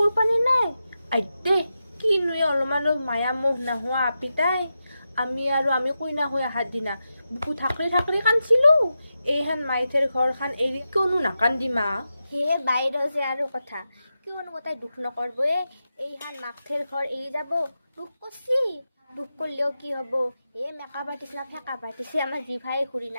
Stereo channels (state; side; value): inverted; both; correlation -0.90